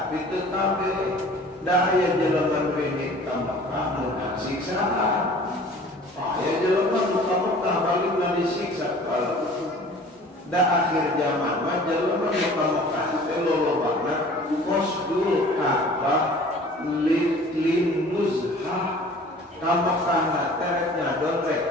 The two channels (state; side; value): normal; both; correlation 0.47